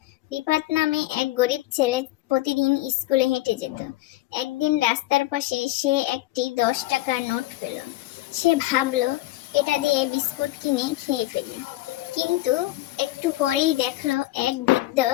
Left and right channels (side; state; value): right; quieter; 17.4 dB